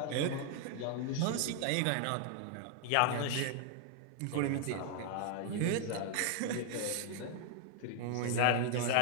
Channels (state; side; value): different; both; correlation 0.00